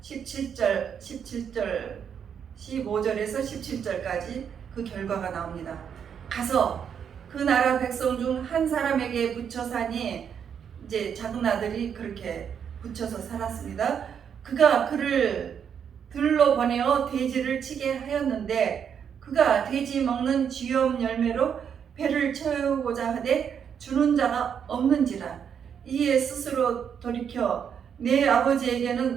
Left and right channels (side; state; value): left; quieter; 7.8 dB